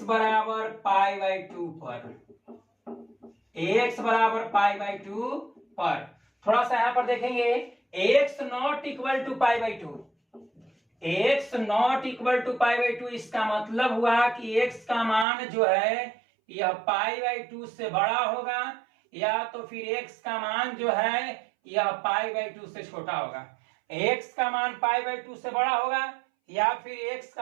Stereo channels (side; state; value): left; drops out; at 15.2 s